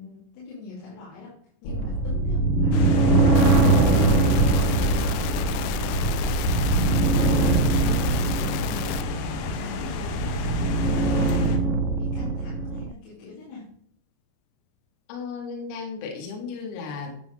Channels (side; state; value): right; late; 34 ms